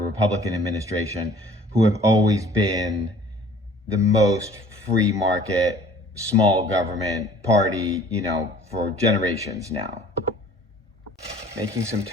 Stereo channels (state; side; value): normal; both; correlation 0.52